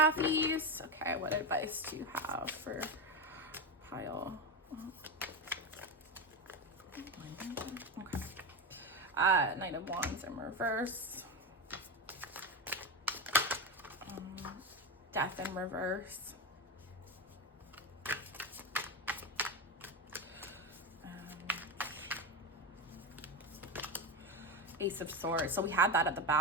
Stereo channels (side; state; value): both; normal; correlation 0.16